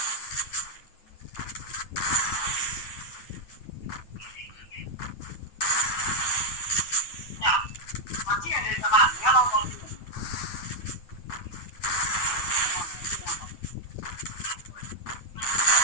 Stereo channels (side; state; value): right; late; 9.1 ms